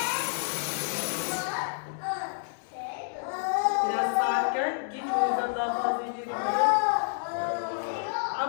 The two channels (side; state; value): right; silent; 59 dB below the other